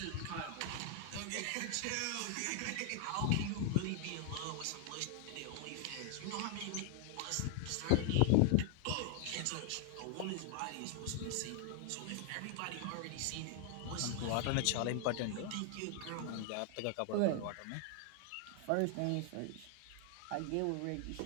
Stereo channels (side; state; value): both; different; correlation 0.00